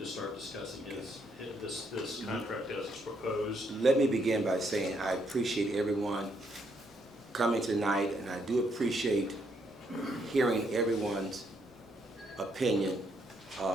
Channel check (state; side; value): normal; both; correlation 0.74